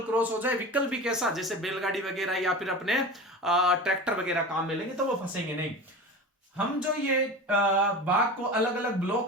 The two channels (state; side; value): normal; both; correlation 0.31